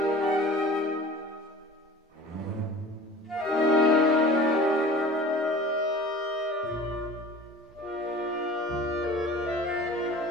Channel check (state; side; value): normal; both; correlation 0.42